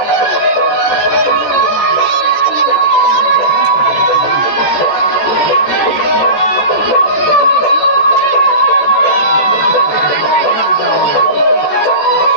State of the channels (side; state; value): right; late; 14 ms